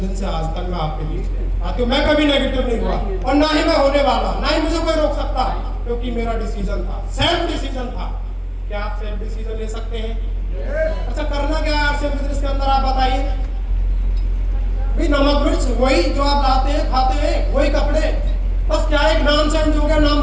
से आज तक मैं आपके लिए आती हूँ। मैं कभी नेगेटिव नहीं हुआ, और ना ही मैं होने वाला, ना ही मुझे कोई रोक सकता, क्योंकि मेरा डिसीजन था, सेल्फ डिसीजन था। क्या आप सेल्फ डिसीजन ले सकते हैं? अच्छा, करना क्या है आपसे बिजनेस के अंदर, आप बताइए। भाई, नमक मिर्च वही जो आप लाते हैं, खाते हैं, वही कपड़े, बस क्या एक नाम चेंज हो गया, नाम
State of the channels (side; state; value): both; identical; correlation 1.00